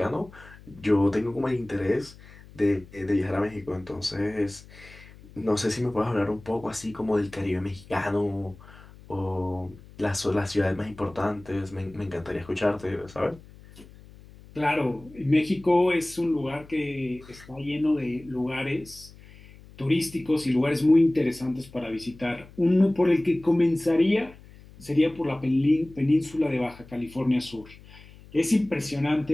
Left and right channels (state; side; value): noise; left; hum, 21 dB below the sound